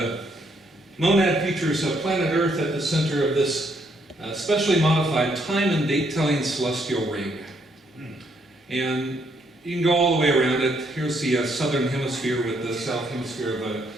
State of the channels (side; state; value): both; normal; correlation 0.72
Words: Monad features planet Earth at the center of this specially modified time and date telling celestial ring. And you can go all the way around it. Here's the southern hemisphere with the south hemisphere